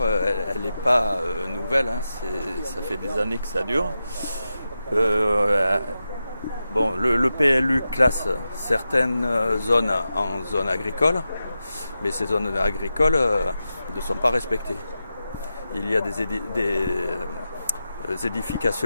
elle n'est pas nouvelle, hein, ça fait des années que ça dure. Bon, le PLU classe certaines zones en zones agricoles, mais ces zones agricoles ne sont pas respectées. Il y a des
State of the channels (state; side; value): inverted; both; correlation -0.91